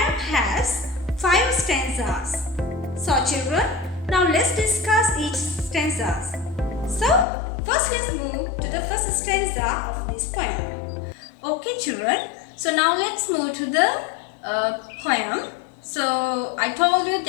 has 5 stanzas. So children, now let's discuss each stanzas. So first let's move to the first stanza of this poem. Okay children, so now let's move to the poem. So I told you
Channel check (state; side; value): drops out; right; at 7.2 s